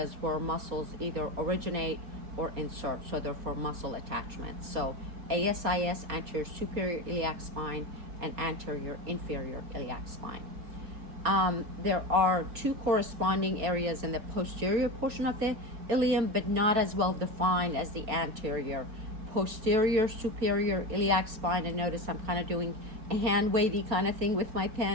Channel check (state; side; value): late; left; 4.3 ms